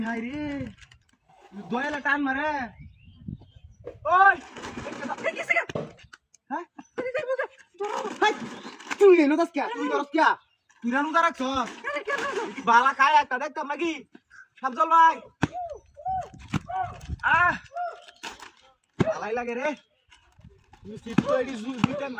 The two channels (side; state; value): both; identical; correlation 1.00